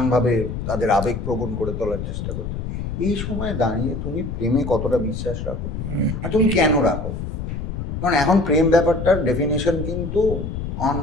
তাদের আবেগ প্রবণ করে তোলার চেষ্টা করছে, এই সময় দাঁড়িয়ে তুমি প্রেমে কতটা বিশ্বাস রাখো, আর তুমি কেন রাখো? কারণ এখন প্রেম ব্যাপারটার ডেফিনেশন কিন্তু অন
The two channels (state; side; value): noise; left; rumble, 5 dB below the sound